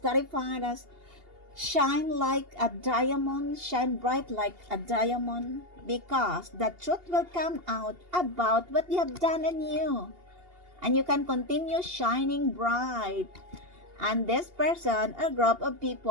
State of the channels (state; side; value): late; left; 2.8 ms